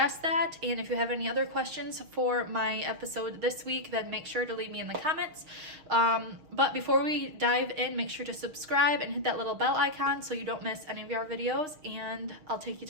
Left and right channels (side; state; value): left; late; 6.4 ms